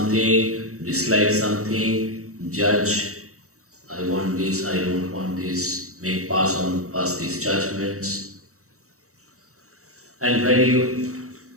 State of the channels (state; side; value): late; left; 0.64 ms